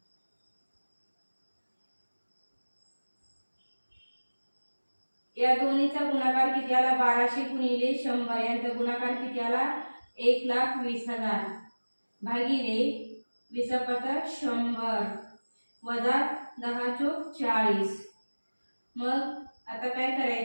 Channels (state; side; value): inverted; both; correlation -1.00